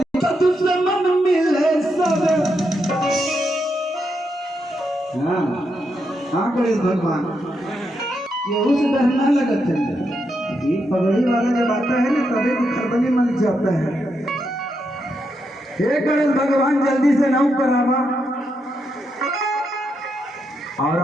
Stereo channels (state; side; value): normal; both; correlation 0.82